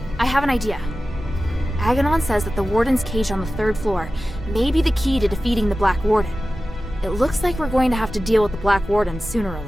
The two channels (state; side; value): normal; both; correlation 0.95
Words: I have an idea. Aganon says that the Warden's cage on the 3rd floor may be the key to defeating the Black Warden. It looks like we're going to have to deal with the Black Warden sooner or